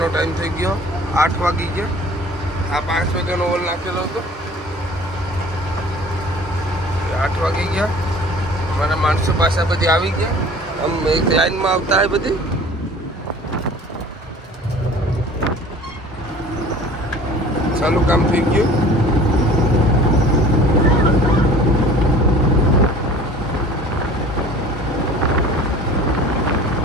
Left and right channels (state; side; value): normal; both; correlation 0.46